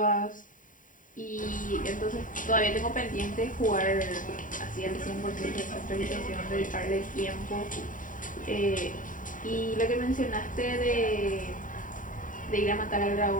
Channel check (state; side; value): late; right; 0.38 ms